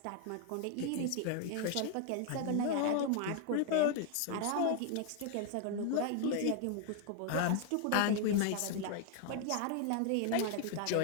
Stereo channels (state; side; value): different; both; correlation 0.00